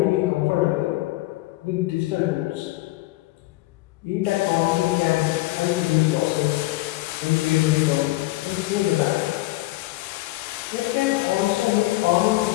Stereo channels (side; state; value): right; quieter; 19.3 dB